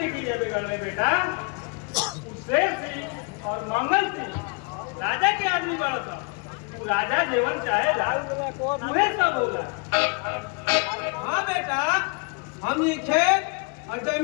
किए बिगड़ने बेटा। शेर सिंह और मंगल सिंह राजा के आदमी बड़ा था। तू राजा जीवन चाहे तुम्हें सब बोला। हाँ बेटा हमनी खेत और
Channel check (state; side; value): quieter; right; 32.6 dB